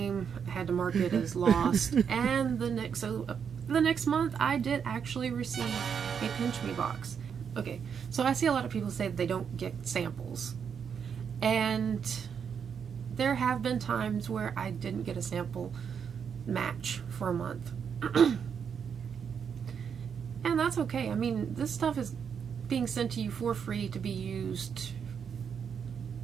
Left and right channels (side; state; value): left; quieter; 7.1 dB